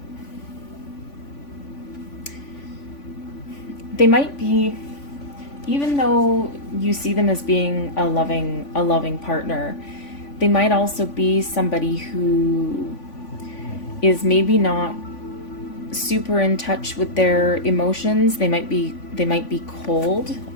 they might be, even though you see them as being a loving partner, they might also be somebody who is maybe not super in touch with their emotions. They might be cold,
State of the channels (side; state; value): right; late; 3.5 ms